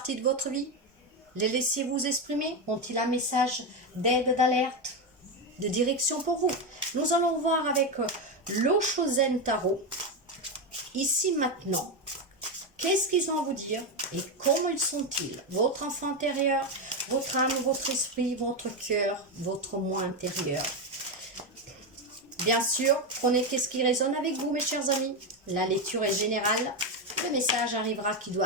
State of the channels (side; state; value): both; normal; correlation 0.10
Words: de votre vie? Les laissez-vous exprimer? Ont-ils un message d'aide, d'alerte, de direction pour vous? Nous allons voir avec l'Oshozen Tarot, ici maintenant, qu'est-ce qu'ils ont à vous dire et comment ils sont-ils? Votre enfant intérieur, votre âme, votre esprit, votre cœur, votre moi intérieur. Bien sûr, prenez qu'est-ce qui résonne avec vous mes chers amis. La lecture est générale. Le message arrivera qui doit